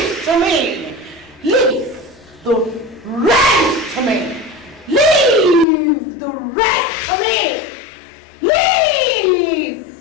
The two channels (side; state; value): right; drops out; at 5.7 s